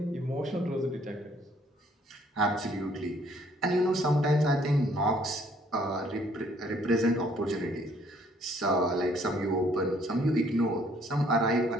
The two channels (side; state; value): both; normal; correlation 0.63